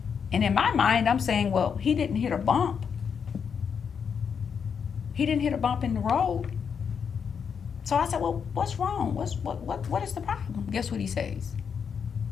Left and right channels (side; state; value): right; quieter; 6.8 dB